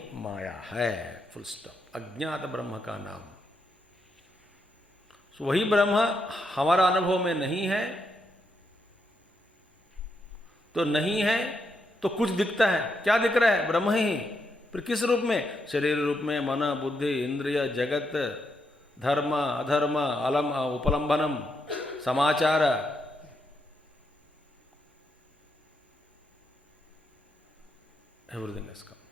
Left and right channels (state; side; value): normal; both; correlation 0.81